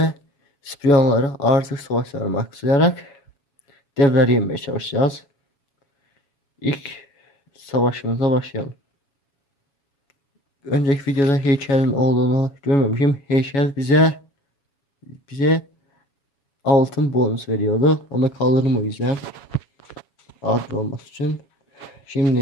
spiyonları artık savaşlarına maksalayarak devleri yenmeye çalışacağız. İlk savaşımıza başlayalım. Önceki videoda heykelin olduğunu görmemişim. Heykel bize altın bonus veriyordu. Onu kaldırdım o yüzden. Adil olması için.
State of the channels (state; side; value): late; right; 7.2 ms